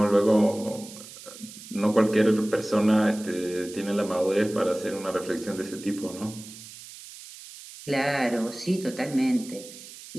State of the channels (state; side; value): noise; right; hiss, 16 dB below the sound